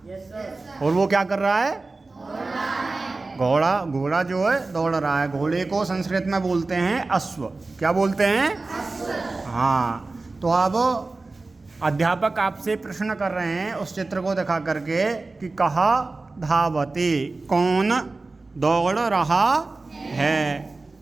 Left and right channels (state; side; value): quieter; left; 3.5 dB